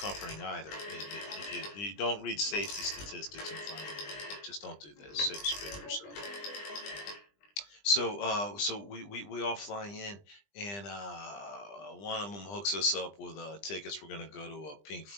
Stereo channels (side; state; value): right; late; 20 ms